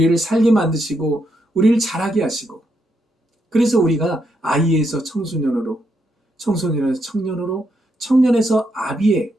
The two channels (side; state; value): both; normal; correlation 0.79